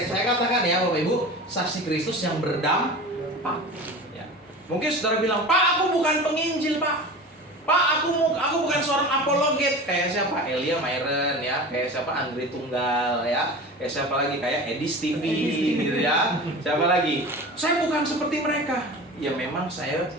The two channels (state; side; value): normal; both; correlation 0.34